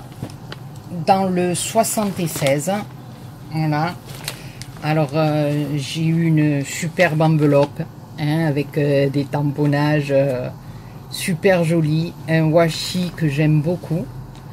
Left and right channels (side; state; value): both; identical; correlation 1.00